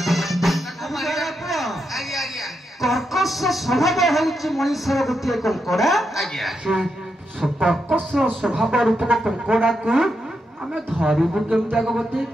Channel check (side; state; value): both; normal; correlation 0.84